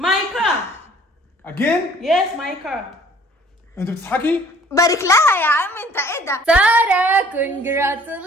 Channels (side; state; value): both; normal; correlation 0.55